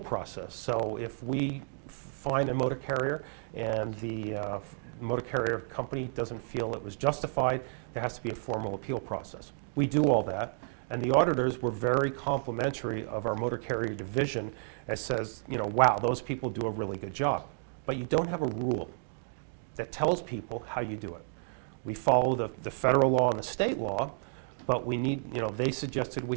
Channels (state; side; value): silent; left; 57 dB below the other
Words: process. So if we find a motor carrier and the motor carrier company doesn't feel it was justified, there has to be a formal appeal process. We do all that, and the auditors were very complimentary of our motor carrier division and says, wow, those people do a really good job. But you don't have a rule that tells people how you do it. We follow the federal law and the state law, but we need, they suggested